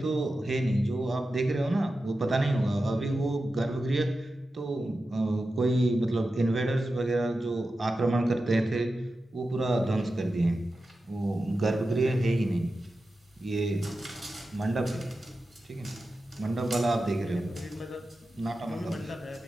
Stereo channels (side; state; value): both; normal; correlation 0.92